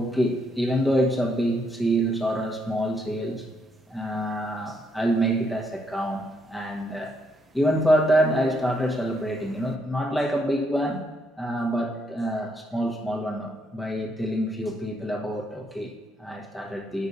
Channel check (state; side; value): normal; both; correlation 0.75